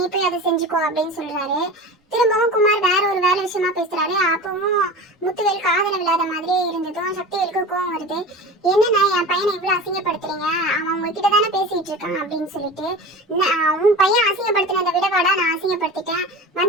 போய் அதை செஞ்சுக்கோ அப்படின்னு சொல்றாரு. திரும்பவும் குமார் வேற ஒரு வேலை விஷயமா பேசுறாரு. அப்பவும் முத்துவேல் காதல விழாத மாதிரியே இருந்ததும் சக்திவேலுக்கு கோவம் வருது. என்னன்னா என் பையனை இவ்வளவு அசிங்கப்படுத்துறீங்க, அவன் உங்ககிட்ட தானே பேசிட்டு இருக்கான் அப்படின்னு சொல்லிட்டு, உன் பையன் அசிங்கப்படுத்தினதை விடவாடா நான் அசிங்கப்படுத்திட்டேன்,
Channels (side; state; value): both; normal; correlation 0.33